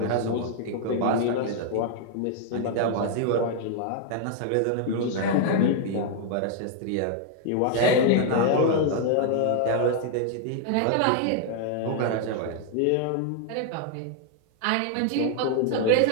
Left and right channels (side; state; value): both; different; correlation 0.00